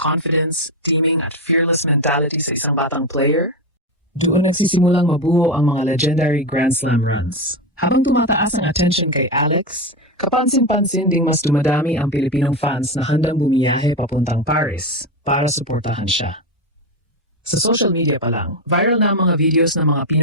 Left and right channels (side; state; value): both; normal; correlation 0.14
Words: teaming at fearless mentality sa isang batang player, doon nagsisimulang mabuo ang mga legendary Grand Slam runs. Habang tumataas ang attention kay Alex, kapansin-pansin ding mas dumadami ang Pilipinong fans na handang bumiyahe papuntang Paris para suportahan siya. Sa social media pa lang, viral na ang mga videos ng mga